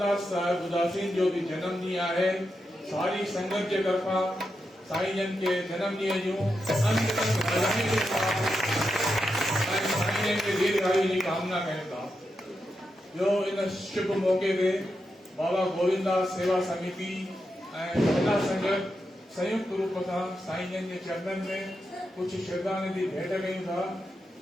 साहिब उदासीन जो बि जनम ॾींहुं आहे। सारी संगत के तरफा साईं जन के जन्म ॾींहं जूं अनंत बधाई के साथ साईं जन के दीर्घायु की कामना कयूं था। जो इन शुभ मौके ते बाबा गोविंदास सेवा समिति ऐं महिला संगत संयुक्त रूप सां साईं जन के चरणन में कुछ श्रद्धांजलि भेंट कयूं था।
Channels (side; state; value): both; normal; correlation 0.86